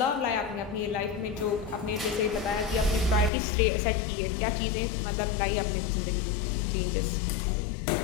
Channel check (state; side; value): drops out; right; at 3.3 s